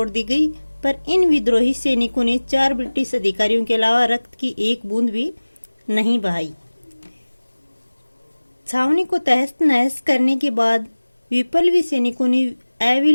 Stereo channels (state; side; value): inverted; both; correlation -1.00